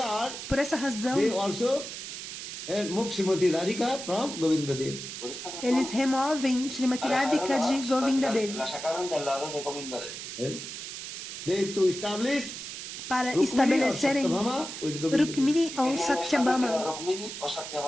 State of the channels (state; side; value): noise; right; hiss, 8 dB below the sound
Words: Por essa razão, They also move Srimati Radhika from Govinda Dev. Por esta razón, eles removem Srimati Radhika de Govinda Dev la sacaron del lado de Govinda Dev. They to establish para Rukmini or estabelecerem Satyabhama with Govinda Dev. Rukmini ou Querían establecer a Satyabhama Rukmini o